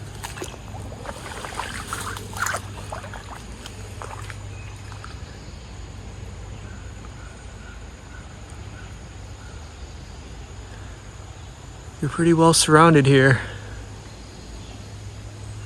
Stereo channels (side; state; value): both; identical; correlation 1.00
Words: You're pretty well surrounded here.